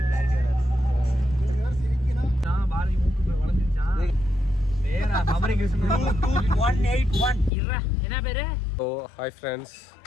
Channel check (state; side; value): drops out; right; at 7.5 s